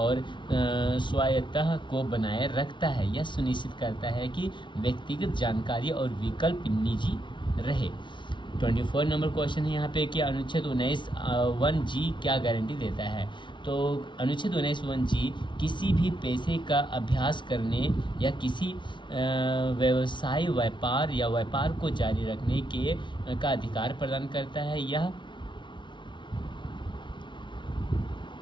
स्वायत्तता को बनाए रखता है। यह सुनिश्चित करता है कि व्यक्तिगत जानकारी और विकल्प निजी रहे। 24 नंबर क्वेश्चन है यहाँ पे कि अनुच्छेद 19(1)(g) क्या गारंटी देता है? तो अनुच्छेद 19(1)(g) किसी भी पेशे का अभ्यास करने या किसी व्यवसाय व्यापार को जारी रखने का अधिकार प्रदान करता है। यह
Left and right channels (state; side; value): late; right; 0.24 ms